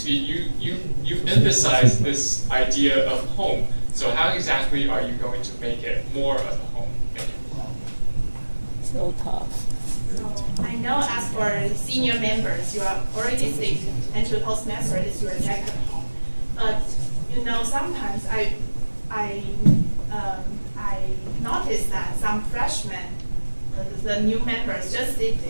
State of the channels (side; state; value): both; inverted; correlation -1.00